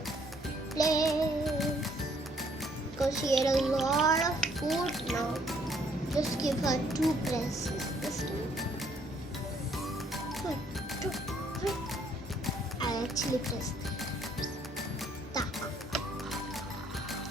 Please. Because she ate a lot of food now. Just give her 2 presses this time. 1, 2, 3. I actually pressed 3 times.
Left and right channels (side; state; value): both; normal; correlation 0.65